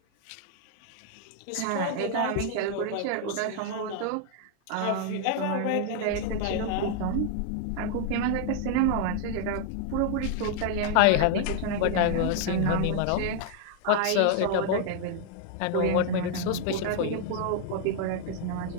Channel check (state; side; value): different; both; correlation 0.00